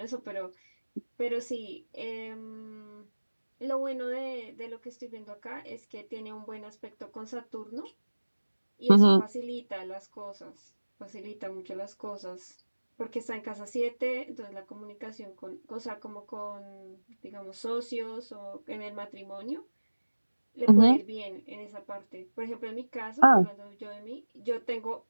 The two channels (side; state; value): both; inverted; correlation -1.00